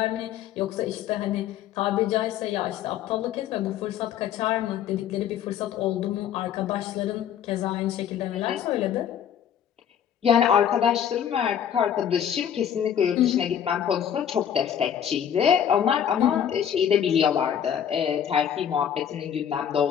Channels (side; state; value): right; quieter; 9.2 dB